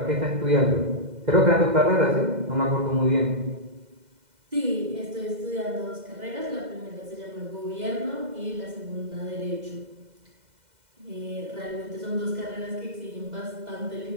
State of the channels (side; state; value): left; late; 2.0 ms